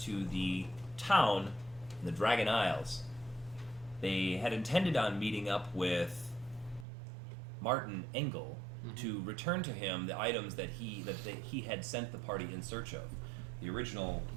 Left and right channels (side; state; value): left; drops out; at 6.9 s